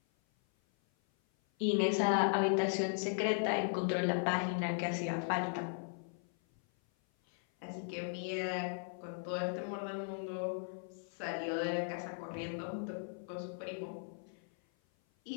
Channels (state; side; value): silent; right; 53 dB below the other